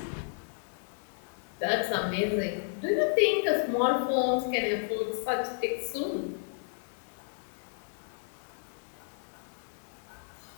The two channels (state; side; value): silent; right; digital silence